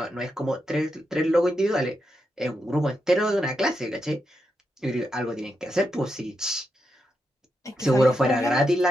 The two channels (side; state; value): both; normal; correlation 0.85